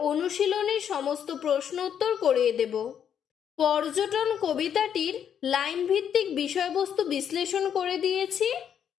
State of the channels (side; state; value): right; quieter; 8.6 dB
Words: অনুশীলনের সমস্ত প্রশ্ন উত্তর করিয়ে দেব। পর্যটন কবিতাটির লাইন ভিত্তিক বিষয়বস্তু বিশ্লেষণ করে দিয়েছি